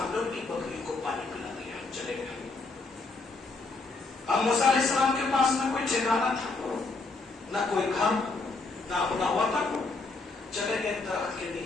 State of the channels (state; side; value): quieter; right; 3.6 dB